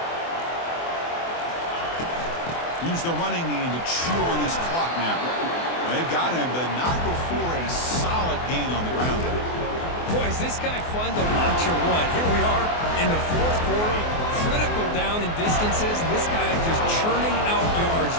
Use the running game to chew on this clock now. They've got him, but not before a solid gain on the ground there. Boy, is this guy fun to watch or what? Here we are in the 4th quarter, critical down in distances. And this guy just churning out yards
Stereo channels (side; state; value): right; late; 24 ms